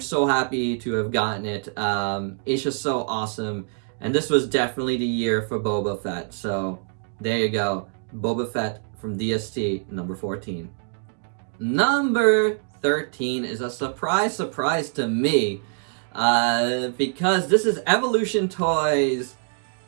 happy to have gotten it. It's just so awesome, and this was definitely the year for Boba Fett. So, there you go. Boba Fett from DST, number 14. Number 13 is a surprise to me, because this is Evolution Toys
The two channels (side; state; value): left; silent; 56 dB below the other